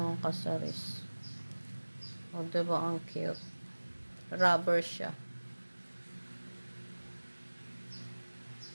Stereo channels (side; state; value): both; inverted; correlation -1.00